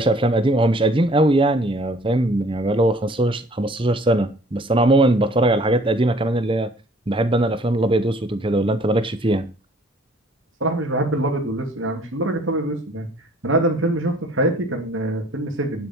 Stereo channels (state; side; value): normal; both; correlation 0.55